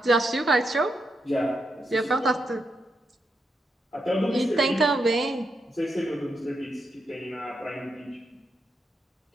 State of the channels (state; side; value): normal; both; correlation 0.83